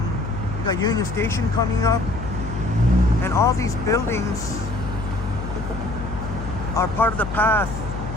we got Union Station coming up, and all these buildings are part of the path,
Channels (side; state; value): left; noise; hum, 7 dB below the sound